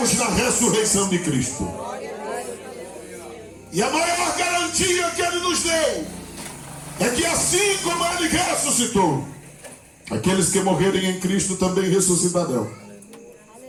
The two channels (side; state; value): both; identical; correlation 1.00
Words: na ressurreição de Cristo. E a maior garantia que ele nos deu é que assim como ele ressuscitou, aqueles que morrerem em Cristo também ressuscitarão.